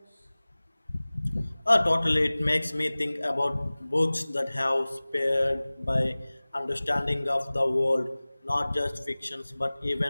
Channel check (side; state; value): both; inverted; correlation -0.99